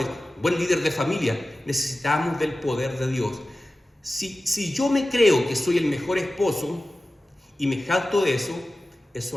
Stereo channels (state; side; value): normal; both; correlation 0.95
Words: buen líder de familia. Necesitamos del poder de Dios. Si yo me creo que soy el mejor esposo y me jacto de eso